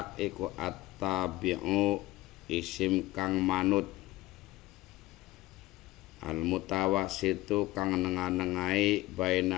iku at-tabi'u isim kang manut, al-mutawassitu kang nengah-nengahi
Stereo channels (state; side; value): quieter; right; 17.9 dB